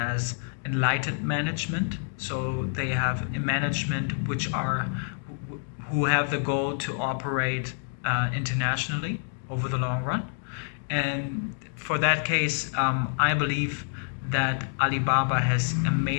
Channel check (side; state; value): right; silent; 60 dB below the other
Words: enlightened management. So they have a management who have the goal to operate internationally over the long run. And for that case, I believe that Alibaba has